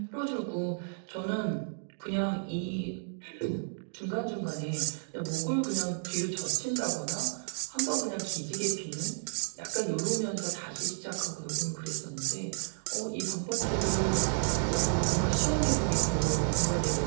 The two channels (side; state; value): left; silent; digital silence